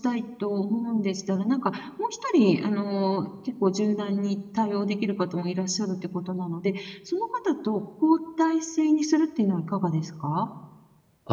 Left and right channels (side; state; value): both; identical; correlation 1.00